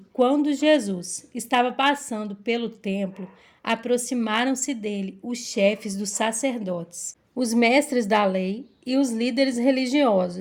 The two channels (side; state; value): both; identical; correlation 1.00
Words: quando Jesus estava passando pelo templo, aproximaram-se dele os chefes dos sacerdotes, os mestres da lei e os líderes